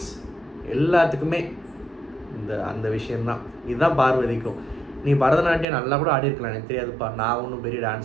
எல்லாத்துக்குமே அந்த விஷயந்தான். இதுதான் பார்வதிக்கும். நீ பரதநாட்டியம் நல்லா கூட ஆடிருக்கலாம், எனக்கு தெரியாதுப்பா. நான் ஒன்றும் பெரிய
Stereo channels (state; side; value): drops out; left; at 5.7 s